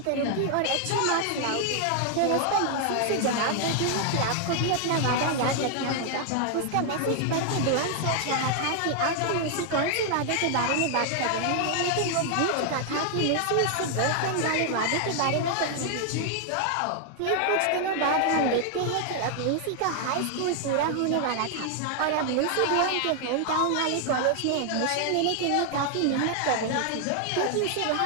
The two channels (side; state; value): both; different; correlation 0.00